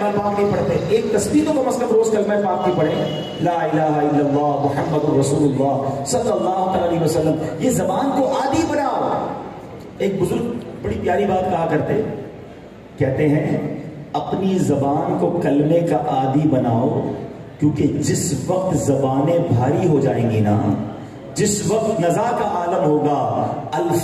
پاک نہیں پڑھتے. ایک تسبیح تو کم از کم روز کلمہ پاک کی پڑھیں، لا الہ الا اللہ محمد رسول اللہ صلی اللہ علیہ وسلم. یہ زبان کو عادی بناؤ. ایک بزرگ بڑی پیاری بات کہا کرتے، کہتے ہیں اپنی زبان کو کلمے کا عادی بناؤ، کیونکہ جس وقت زبانیں بھاری ہو جائیں گی نا جس وقت نزا کا عالم ہوگا،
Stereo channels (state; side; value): identical; both; correlation 1.00